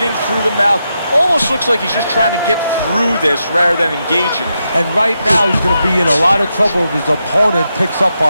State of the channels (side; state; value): both; inverted; correlation -0.85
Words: through the mouth. Almost looks like he's just trying to get through this rather than engaging. And right now he's going to be in a lot of trouble if his opponent picks up